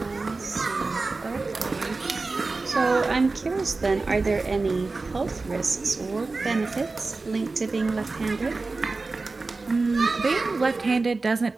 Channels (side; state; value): left; quieter; 3.7 dB